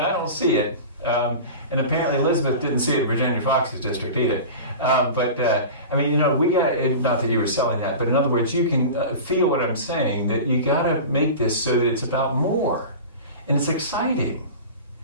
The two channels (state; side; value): inverted; both; correlation -0.32